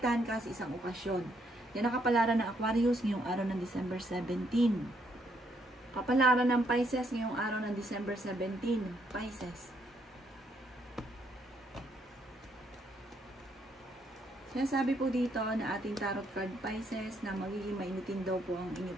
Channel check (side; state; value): both; normal; correlation 0.73